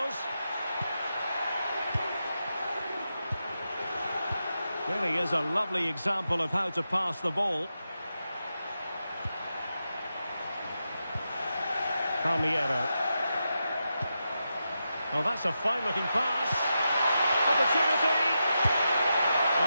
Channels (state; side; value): inverted; both; correlation -0.88